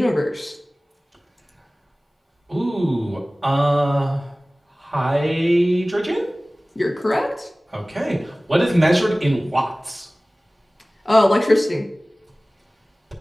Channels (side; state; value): both; normal; correlation 0.98